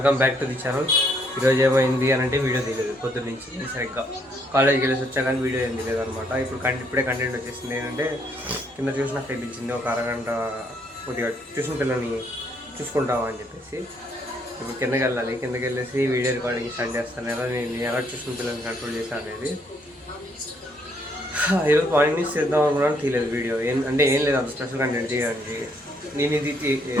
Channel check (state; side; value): normal; both; correlation 0.70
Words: back to the channel. ఈరోజు ఏమైంది అని అంటే వీడియో తీయలేదు పొద్దున్న నుంచి సరిగ్గా కాలేజ్కి వెళ్ళేసి వచ్చా కానీ వీడియో ఏం తీయలేదు అనమాట. ఇప్పుడే కంటెంట్ వచ్చేసింది. ఏంటంటే కింద ట్యూషన్ అక్కడ పిలిచింది, ఒక అరగంట కొద్దిగా ట్యూషన్ పిల్లల్ని చూసుకుంటామా అని చెప్పేసి ఇప్పుడు కిందకి వెళ్ళాలి. కిందకి వెళ్ళేసి వీడియో రికార్డింగ్ స్టార్ట్ చేస్తాను. నేను ఎలా ట్యూషన్ పిల్లల్ని కంట్రోల్ చేశాను అనేది ఈరోజు మార్నింగ్ నుంచి చేద్దాం అనుకున్నాను, తీయలేదు వీడియో. ఏం లేదు అంత స్పెషల్ కంటెంట్ చేయడానికి. నేను ఇది